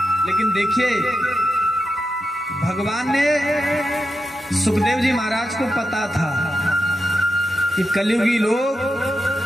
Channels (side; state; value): both; normal; correlation 0.88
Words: लेकिन देखिए भगवान ने सुखदेव जी महाराज को पता था कि कलयुगी लोग